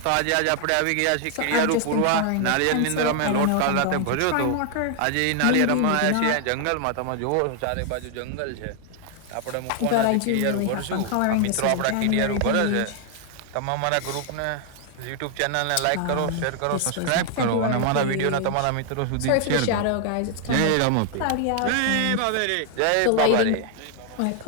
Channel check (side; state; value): both; different; correlation 0.00